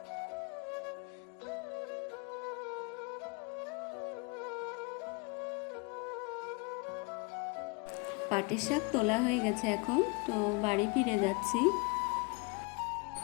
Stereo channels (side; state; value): right; quieter; 29.3 dB